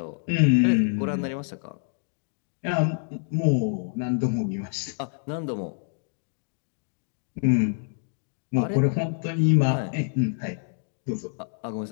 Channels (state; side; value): silent; right; digital silence